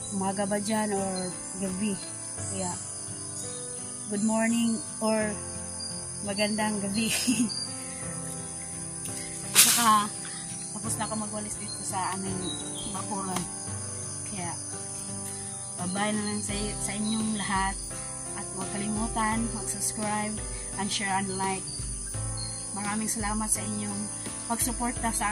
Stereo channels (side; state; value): both; identical; correlation 1.00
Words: umaga ba dyan or gabi. Kaya good morning or magandang gabi. Saka tapos na ako magwalis dito sa aming bakuran. Kaya, bye-bye na lang sa inyong lahat. At huwag kalimutan, mag-subscribe, and share and like. Maraming salamat sa inyong pagsuporta